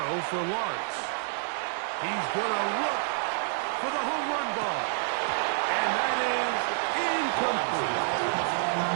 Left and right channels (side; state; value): left; silent; digital silence